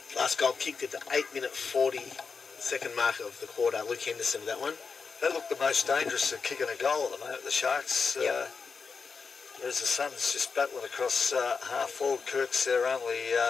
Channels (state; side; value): quieter; right; 5.2 dB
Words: Last goal kicked at the 8-minute 40-second mark of the quarter. Luke Henderson with that one. They look the most dangerous at kicking a goal at the moment, the Sharks. Yep. Whereas the Suns just battling across half forward. Kirk's their only